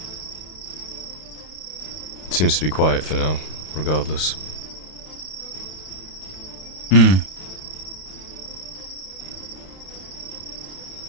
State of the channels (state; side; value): late; right; 32 ms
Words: seems to be quiet for now, regardless. Hmm.